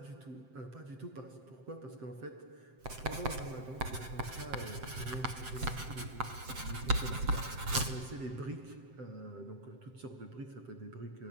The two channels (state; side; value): late; left; 7.7 ms